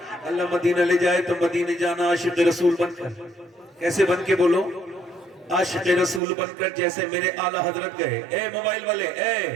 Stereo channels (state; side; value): drops out; left; at 6.2 s